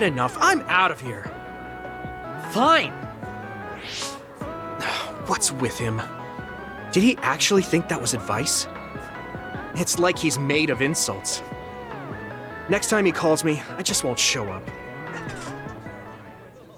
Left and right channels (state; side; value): identical; both; correlation 1.00